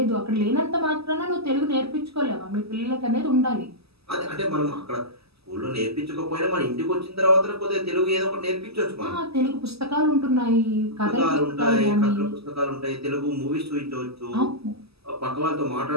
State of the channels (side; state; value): left; late; 0.78 ms